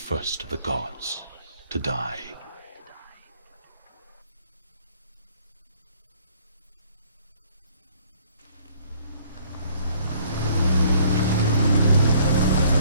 of the gods to die.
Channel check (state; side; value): inverted; both; correlation -0.60